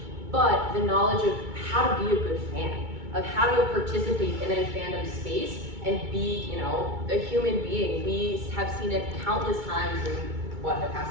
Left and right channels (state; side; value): late; left; 2.3 ms